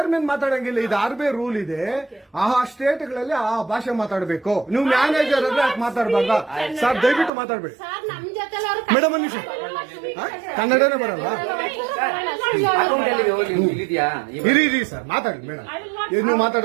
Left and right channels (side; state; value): left; drops out; at 7.3 s